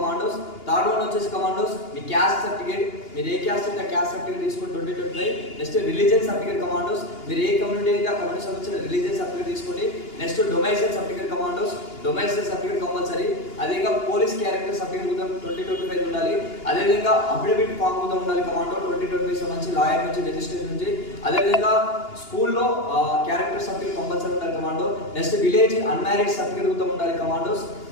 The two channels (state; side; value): late; right; 2.8 ms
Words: Third one వచ్చేసి కమాండోస్ మీ క్యాస్ట్ సర్టిఫికేట్, మీరు ఏ క్యాస్ట్ అయితే క్యాస్ట్ సర్టిఫికేట్ తీసుకొని 2025. నెక్స్ట్ రిలీజియన్ సర్టిఫికేట్ కమాండోస్, మీరు ఏ community అయితే ఆ కమ్యూనిటీ సంబంధించిన రిలీజియన్ సర్టిఫికేట్ తీసుకోండి. నెక్స్ట్ డొమైసైల్ సర్టిఫికేట్ కమాండోస్, డొమైసైల్ సర్టిఫికేట్ కంపల్సరీ. అదేవిధంగా పోలీస్ క్యారెక్టర్ సర్టిఫికేట్ కూడా 2025 ఉండాలి. అదేవిధంగా అఫిడవిట్ ఫామ్ కూడా ఉండాలి కమాండో 2025 సంబంధించి లాయర్ నుంచి, రిజిస్ట్రేషన్ నుంచి. అదేవిధంగా స్కూల్లో క్యారెక్టర్ సర్టిఫికేట్ కంపల్సరీ ఉండాలి commando. Next village unmarried certificate కూడా ఉండాలి కమాండోస్.